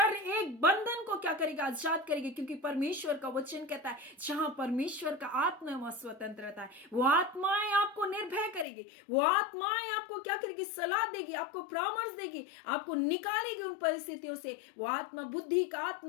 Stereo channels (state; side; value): drops out; right; at 8.7 s